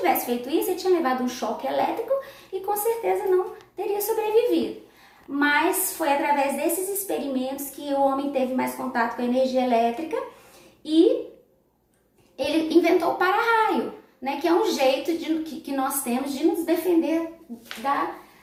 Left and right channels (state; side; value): identical; both; correlation 1.00